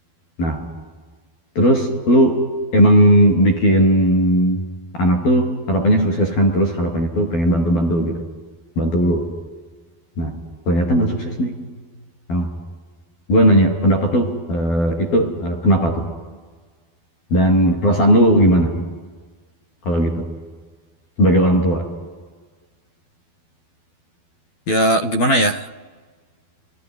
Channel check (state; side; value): late; right; 12 ms